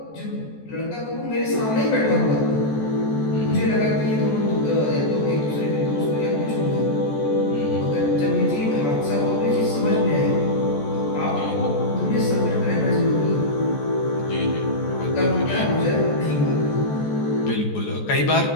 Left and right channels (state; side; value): late; right; 14 ms